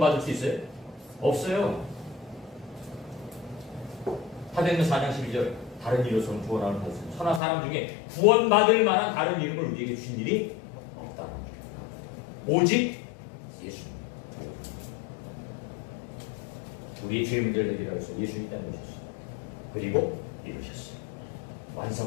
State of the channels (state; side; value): drops out; right; at 7.4 s